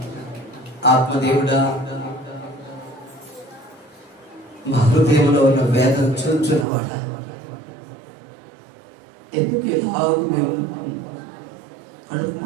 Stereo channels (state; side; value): drops out; left; at 6.7 s